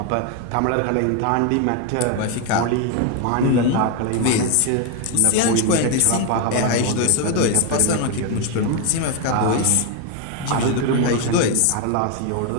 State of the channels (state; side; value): different; both; correlation 0.01